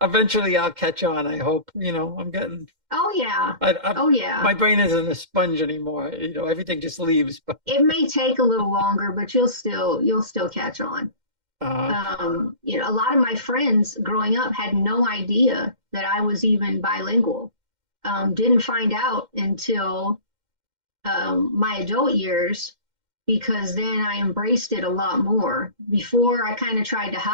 eventually I'll catch on. I hope. I'm getting Oh yeah. I Oh yeah. my brain isn't a sponge anymore. Everything just leaves. But It may take a little longer, but you'll still catch on. uh, A lot of my friends growing up had no idea that I was even bilingual. Didn't find out until my adult years, because then I embraced it a lot more. Before, I kind of tried to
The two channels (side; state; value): left; late; 2.1 ms